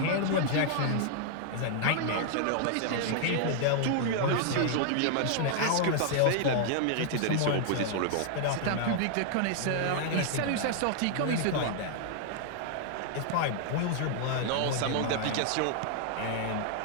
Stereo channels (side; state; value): both; different; correlation 0.00